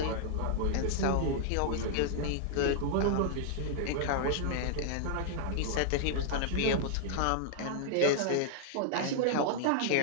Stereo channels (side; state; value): both; different; correlation -0.01